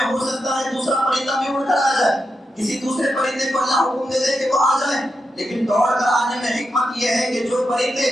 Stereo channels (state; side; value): normal; both; correlation 0.87